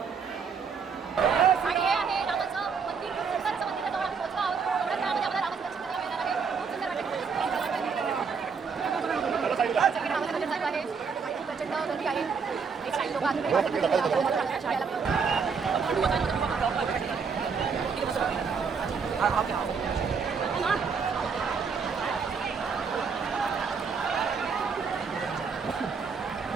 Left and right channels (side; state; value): left; quieter; 5.7 dB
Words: आणि हे आहे रामाचं मंदिर. खूप सुंदर असं मंदिर आहे. जवळ आम्ही पोहोचलो आहोत. एवढ्या वेळामध्ये आम्हाला रामाचं दर्शन करायला मिळणार आहे. खूप सुंदर वाटतं. सगळे रामाचं दर्शन चालू आहे. खूप प्रचंड गर्दी आहे. एक काही लोक